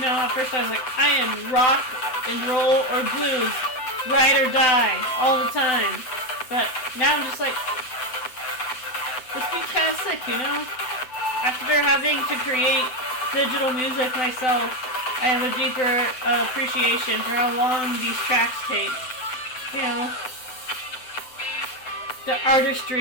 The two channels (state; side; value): late; right; 7.9 ms